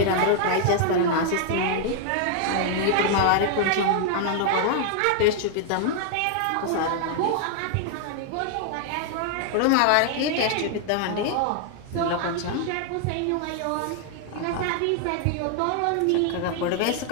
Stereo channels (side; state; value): both; different; correlation 0.00